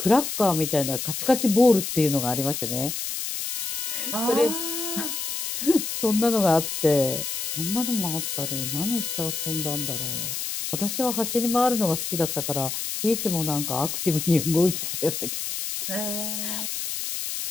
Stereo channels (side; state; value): left; noise; hiss, 4 dB below the sound